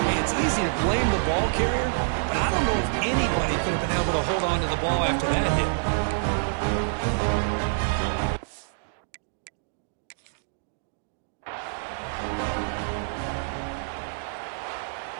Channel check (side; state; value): left; silent; digital silence